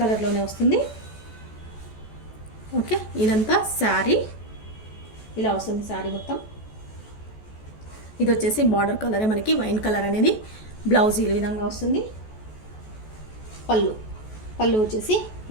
కలర్లోనే వస్తుంది. ఓకే, ఇదంతా శారీ ఇలా వస్తుంది, శారీ మొత్తం. ఇది వచ్చేసి బార్డర్ కలరే మనకి వైన్ కలర్ అనేది. బ్లౌజ్ ఈ విధంగా వస్తుంది. పళ్ళు వచ్చేసి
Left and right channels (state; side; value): late; right; 14 ms